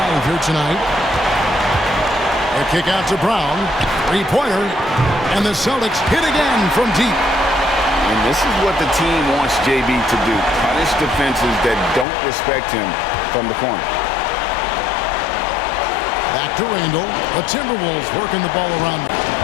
here tonight. A kick out to Brown. 3-pointer. And the Celtics hit again from deep. And this is what the team wants JB to do. Punish defenses that don't respect him from the corner. Back to Randall. The Timberwolves working the ball around.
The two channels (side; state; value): right; drops out; at 12.1 s